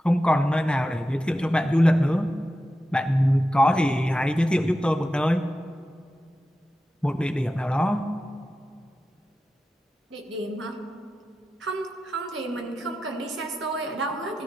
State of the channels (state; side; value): normal; both; correlation 0.91